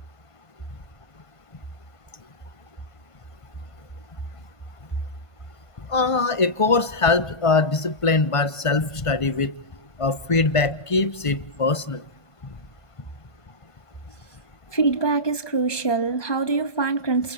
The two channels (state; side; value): late; right; 1.5 ms